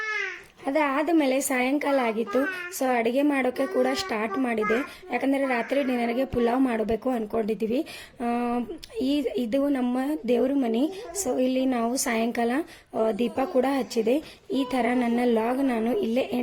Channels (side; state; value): both; identical; correlation 1.00